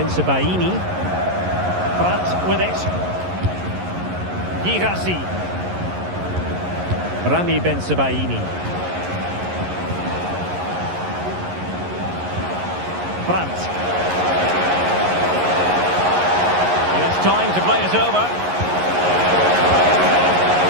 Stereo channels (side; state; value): left; late; 11 ms